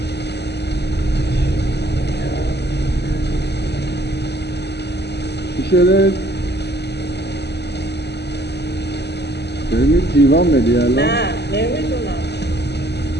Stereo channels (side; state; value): right; late; 0.49 ms